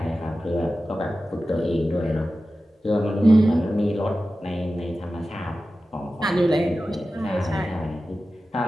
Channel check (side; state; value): both; normal; correlation 0.94